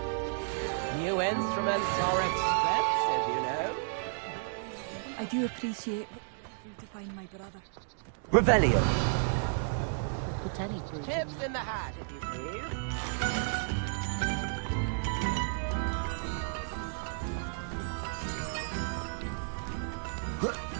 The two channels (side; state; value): left; silent; digital silence